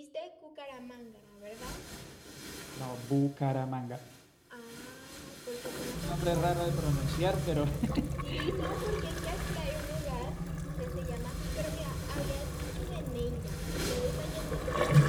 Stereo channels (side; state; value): both; identical; correlation 1.00